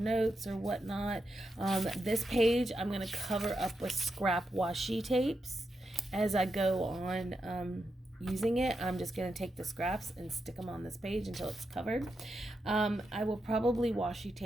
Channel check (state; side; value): normal; both; correlation 0.86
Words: or whatnot. This page I'm going to cover up with scrap washi tapes as I go on using it. I'm just going to take the scraps and stick them on this page until it's covered. I will probably washi